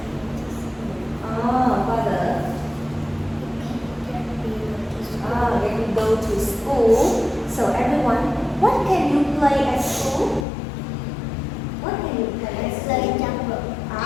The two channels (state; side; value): drops out; right; at 10.4 s